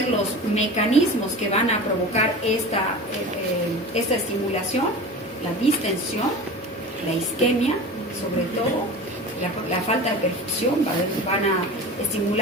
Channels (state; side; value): normal; both; correlation 0.34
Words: los mecanismos que van a provocar esta estimulación? La distensión, la isquemia, sobre todo, la falta de perfusión, van a